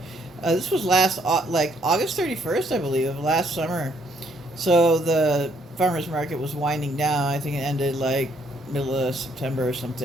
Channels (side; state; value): both; normal; correlation 0.68